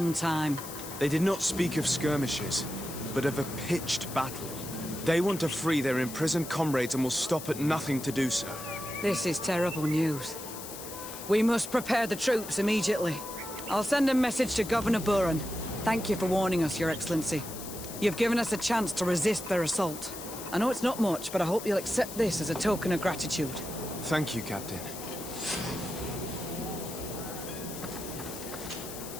time. They did not speak of skirmishes, but of a pitched battle. They want to free their imprisoned comrades and will stop at nothing to do so. This is terrible news. We must prepare the troops immediately. I'll send a message to Governor Buran. Thank you for warning us, Your Excellency. You've given us a chance to resist their assault. I know it's not much, but I hope you'll accept this as a token of gratitude. Thank you, Captain.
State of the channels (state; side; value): noise; left; hiss, 11 dB below the sound